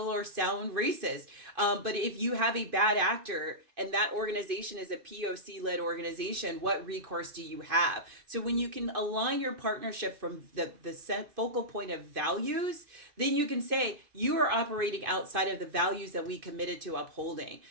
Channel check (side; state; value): left; late; 2.6 ms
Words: or sound racist. But if you have a bad actor and that organization is a POC led organization, what recourse do you have? So when you can align your partnership from the set focal point of values, then you can say you are operating outside of the values that we committed to upholding.